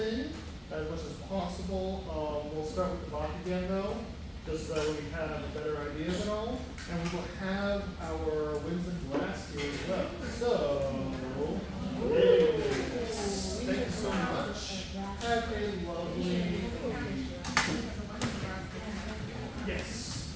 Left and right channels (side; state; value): both; identical; correlation 1.00